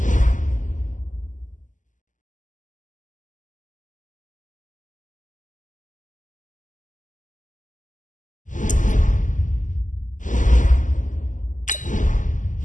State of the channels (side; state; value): right; late; 0.37 ms